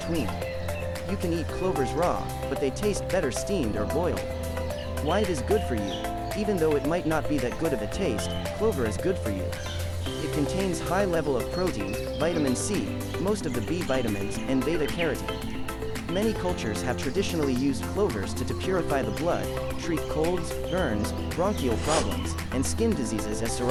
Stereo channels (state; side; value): identical; both; correlation 1.00